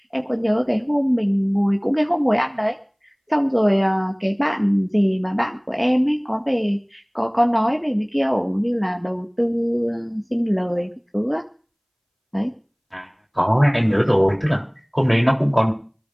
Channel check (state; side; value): identical; both; correlation 1.00